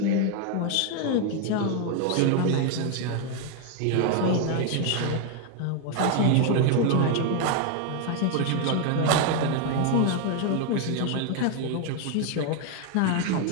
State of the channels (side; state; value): both; different; correlation 0.01